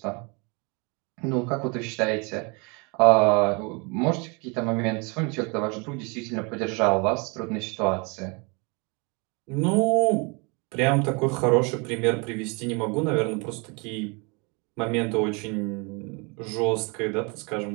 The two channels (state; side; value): quieter; left; 31.0 dB